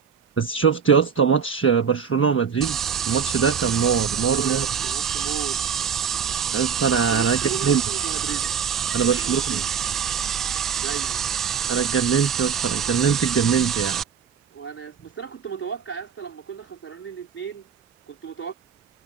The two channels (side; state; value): left; quieter; 6.8 dB